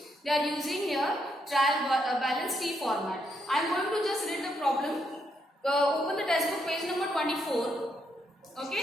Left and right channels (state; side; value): normal; both; correlation 0.77